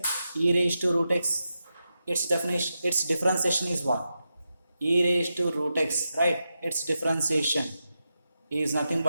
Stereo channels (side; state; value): both; inverted; correlation -0.88